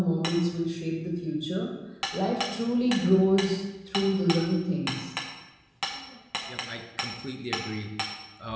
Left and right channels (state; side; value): identical; both; correlation 1.00